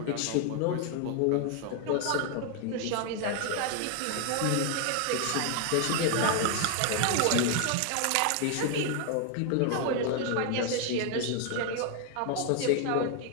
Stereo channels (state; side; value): different; both; correlation 0.00